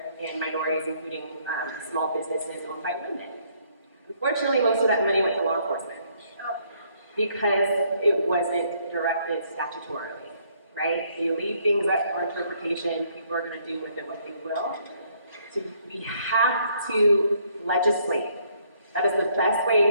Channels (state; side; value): inverted; both; correlation -0.67